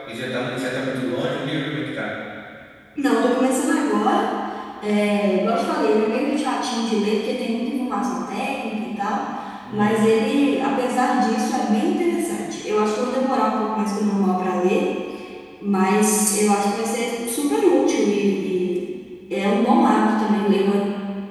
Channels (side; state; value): both; identical; correlation 1.00